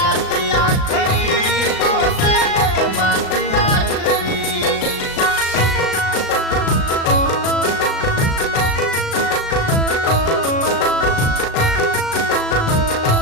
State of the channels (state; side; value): late; right; 36 ms